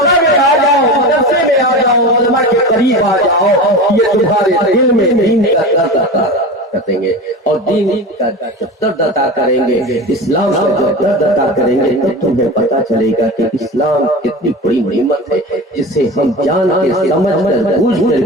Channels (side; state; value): both; normal; correlation 0.29